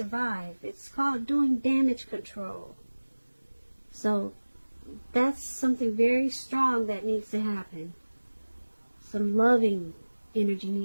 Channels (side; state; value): both; inverted; correlation -1.00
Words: It's called doing damage control. So that's something very strong that needs to happen. Some loving energy